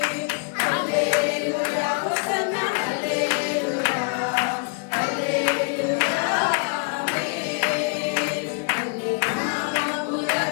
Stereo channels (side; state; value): right; quieter; 38.3 dB